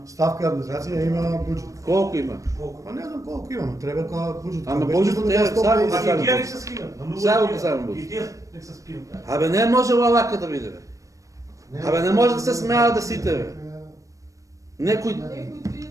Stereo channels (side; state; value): left; late; 0.16 ms